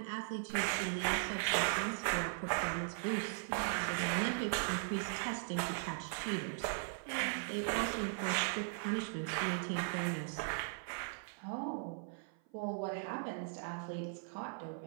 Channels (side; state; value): left; silent; 52 dB below the other